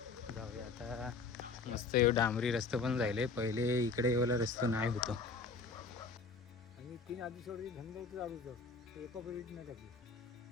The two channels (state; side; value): quieter; right; 4.3 dB